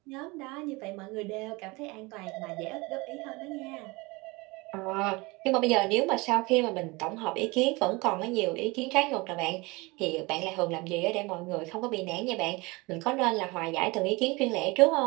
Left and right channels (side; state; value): left; quieter; 24.6 dB